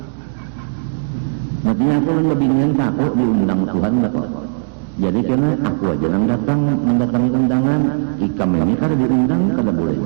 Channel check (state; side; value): silent; left; digital silence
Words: Makanya aku lebih ingin takut diundang Tuhan kok. Jadi karena aku aja yang datang mendatangi undangan, ikam ini kada diundang kada boleh